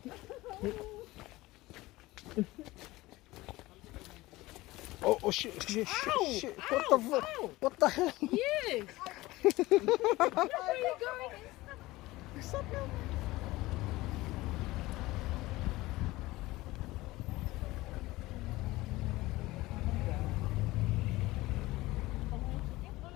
Oh shit. What the fuck? What the hell? You! Where are you going?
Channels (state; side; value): quieter; right; 19.1 dB